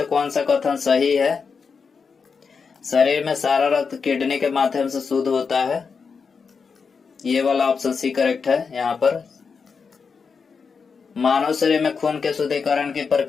कौन सा कथन सही है? शरीर में सारा रक्त किडनी के माध्यम से शुद्ध होता है। ये वाला ऑप्शन सी करेक्ट है। यहाँ पर मानव शरीर में खून के शुद्धिकरण की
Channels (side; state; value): right; quieter; 5.5 dB